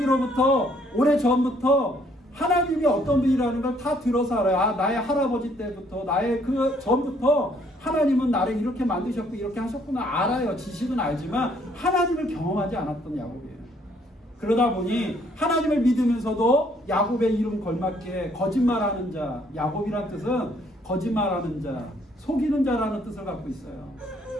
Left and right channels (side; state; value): both; normal; correlation 0.65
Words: 오래전부터 하나님이 어떤 분이라는 걸 다 들어서 알아요. 나의 할아버지 때부터 나의 그 전부터 하나님은 나를 이렇게 만드셨고 이렇게 하셨구나 알아요. 지식은 알지만 하나님을 경험하지 않았던 야곱이에요. 그러다 보니 하나님을 믿으면서도 야곱의 이름 걸맞게 거짓말하는 자, 야곱이란 뜻은 거짓말하는 자, 속이는 자라는 뜻을 갖고 있어요.